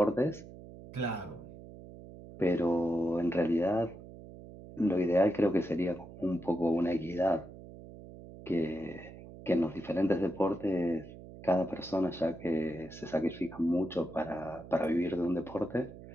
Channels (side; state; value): right; noise; hum, 16 dB below the sound